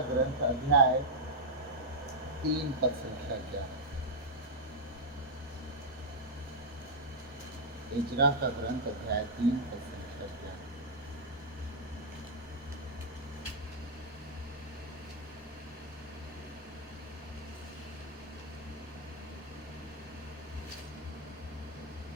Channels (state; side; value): normal; both; correlation -0.06